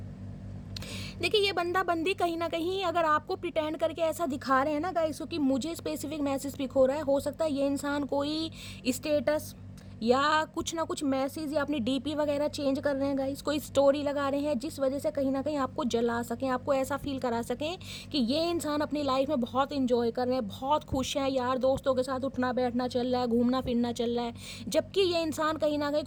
देखिए ये बंदा बंदी कहीं ना कहीं अगर आपको प्रिटेंड करके ऐसा दिखा रहे हैं ना गाइस, क्योंकि मुझे स्पेसिफिक मैसेज पिक हो रहा है, हो सकता है ये इंसान कोई स्टेटस या कुछ ना कुछ मैसेज या अपनी डीपी वगैरह चेंज कर रहे हैं गाइस, कोई स्टोरी लगा रहे हैं जिस वजह से कहीं ना कहीं आपको जला सकें, आपको ऐसा फील करा सकें कि ये इंसान अपनी लाइफ में बहुत इंजॉय कर रहे हैं, बहुत खुश हैं, यार दोस्तों के साथ उठना बैठना चल रहा है, घूमना फिरना चल रहा है, जबकि ये इंसान कहीं ना कहीं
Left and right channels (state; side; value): identical; both; correlation 1.00